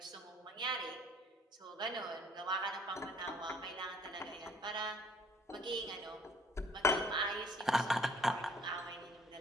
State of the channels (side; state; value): both; normal; correlation 0.58